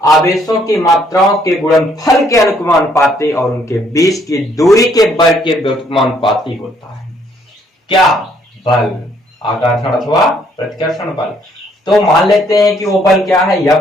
आवेशों की मात्राओं के गुणनफल के अनुक्रमानुपाती और उनके बीच की दूरी के वर्ग के व्युत्क्रमानुपाती होता है। क्या? बल, आकर्षण अथवा प्रतिकर्षण बल। तो मान लेते हैं कि वो बल क्या है?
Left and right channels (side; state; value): both; normal; correlation 0.67